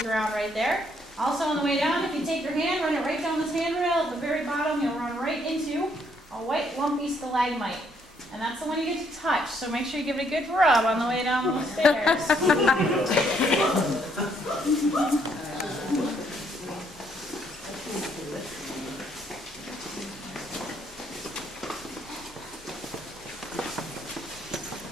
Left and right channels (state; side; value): normal; both; correlation 0.69